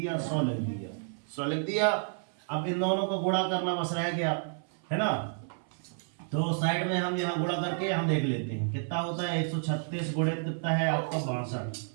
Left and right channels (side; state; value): left; silent; 57 dB below the other